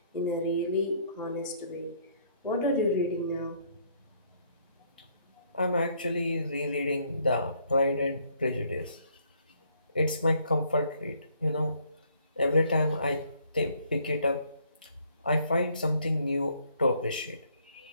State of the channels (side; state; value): both; inverted; correlation -0.66